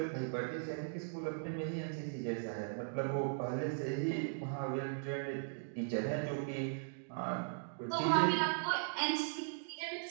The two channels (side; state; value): left; silent; digital silence